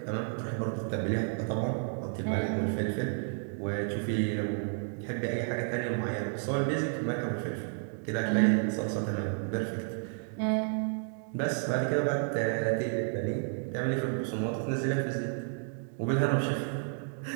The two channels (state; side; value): silent; left; 57 dB below the other